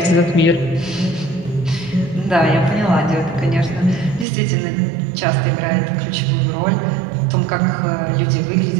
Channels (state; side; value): drops out; left; at 4.2 s